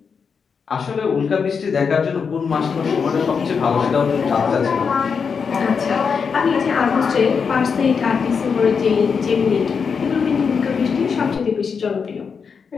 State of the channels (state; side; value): quieter; right; 5.9 dB